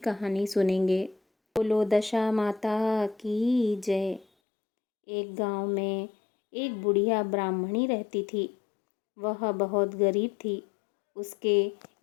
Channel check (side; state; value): right; drops out; at 4.2 s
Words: सुनेंगे। बोलो दशा माता की जय। एक गांव में एक बुढ़िया ब्राह्मणी रहती थी। वह बहुत गरीब थी। उसके